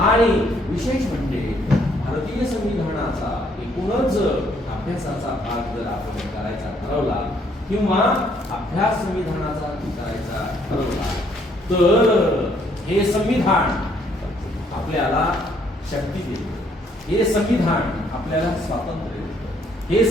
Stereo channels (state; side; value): normal; both; correlation 0.67